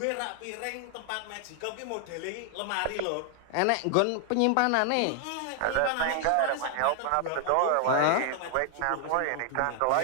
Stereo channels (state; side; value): different; both; correlation 0.00